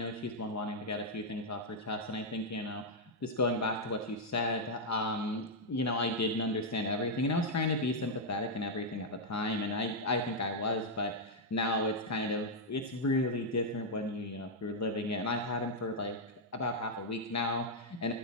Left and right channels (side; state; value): both; normal; correlation -0.04